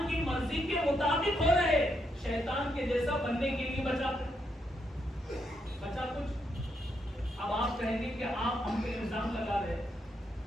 کی مرضی کے مطابق ہو رہے، شیطان کے جیسا بننے کے لیے بچا کچھ؟ اب آپ کہیں گے کہ آپ ہم پہ الزام لگا رہے،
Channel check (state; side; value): normal; both; correlation 0.79